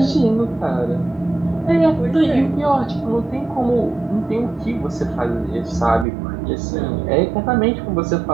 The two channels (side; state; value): left; drops out; at 6.1 s